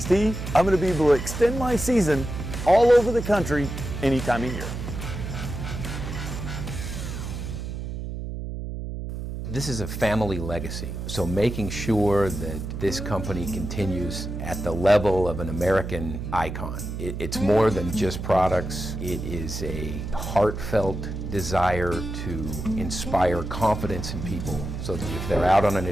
I'm going to be able to extend my season all over the country any time of year. This is a family legacy, so making sure that this company continues at the level of an American icon. It's more than just products. It is a heartfelt desire to inspire confidence in people so that if they're out on an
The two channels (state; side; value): noise; right; hum, 6 dB below the sound